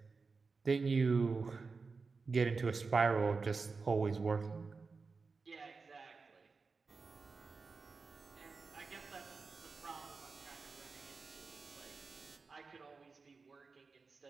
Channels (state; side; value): quieter; left; 4.4 dB